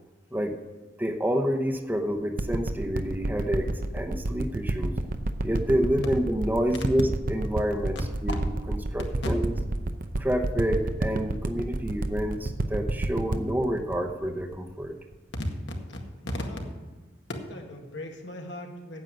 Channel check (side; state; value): both; normal; correlation 0.89